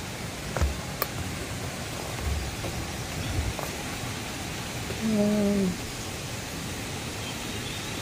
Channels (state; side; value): identical; both; correlation 1.00